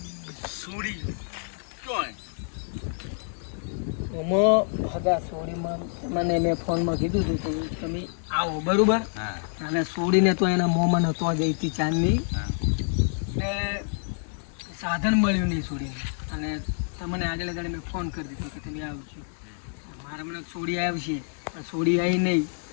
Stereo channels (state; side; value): silent; right; digital silence